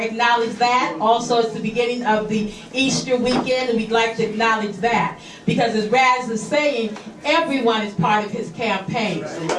acknowledge that. Also, it's the beginning of the Easter weekend, and we'd like to acknowledge that. Because as Raz is saying, everyone is part of his campaign.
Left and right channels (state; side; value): identical; both; correlation 1.00